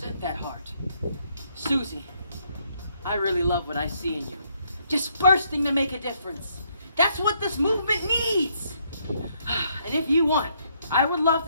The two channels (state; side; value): inverted; both; correlation -0.72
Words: that heart. Susie, I really love what I see in you. Just bursting to make a difference. That's what this movement needs. And if you want, I would love